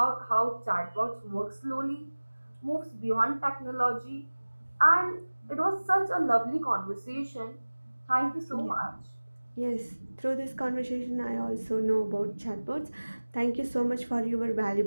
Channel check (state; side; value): inverted; both; correlation -1.00